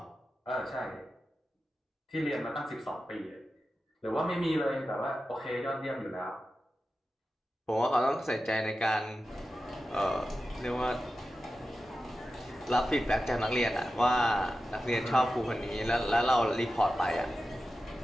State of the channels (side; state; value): both; normal; correlation 0.92